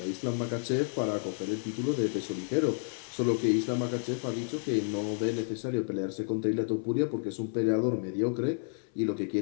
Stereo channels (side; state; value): right; silent; 57 dB below the other